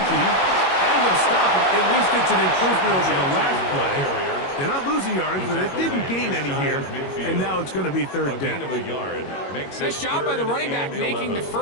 And they'll stop him. At least it's an improvement over the last play. They're not losing yardage, but they didn't gain any here. And now it's going to be third down. Nice job by the running back making the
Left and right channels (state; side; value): late; right; 21 ms